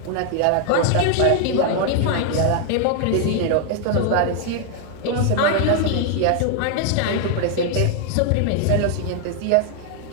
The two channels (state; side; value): different; both; correlation 0.00